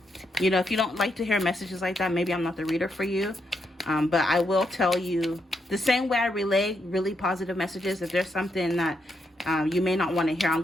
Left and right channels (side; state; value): both; normal; correlation 0.80